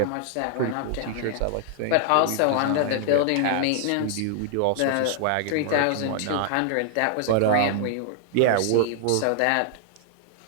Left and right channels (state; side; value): different; both; correlation 0.00